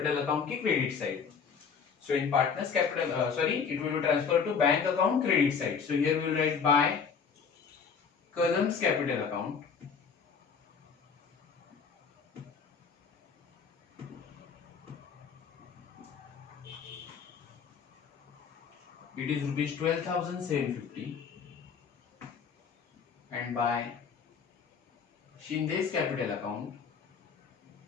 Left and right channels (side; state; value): right; quieter; 6.1 dB